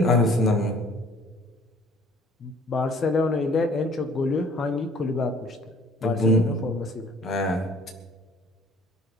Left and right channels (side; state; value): both; normal; correlation 0.54